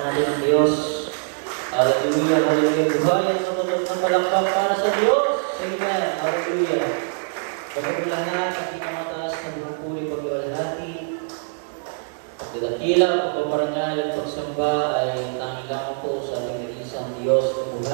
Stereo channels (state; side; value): silent; left; digital silence